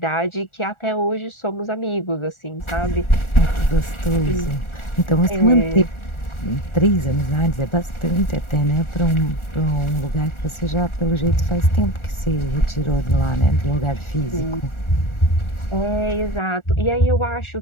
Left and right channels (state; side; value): late; right; 1.4 ms